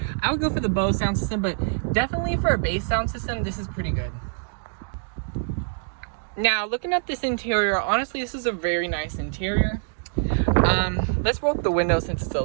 I would go for the Bose sound system, but definitely for a bass sound system, this is pretty good. Now looking at this interior, honestly, this is a very nice interior. Let's roll up the window since it's a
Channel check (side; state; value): left; silent; digital silence